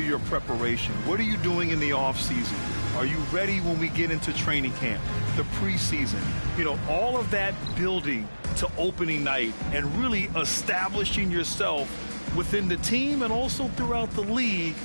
your preparation. What are you doing in the offseason? Are you ready when we get into training camp, the preseason? You know, all of that building to opening night and really establishing yourself within the team and also throughout the league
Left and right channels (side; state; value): both; inverted; correlation -1.00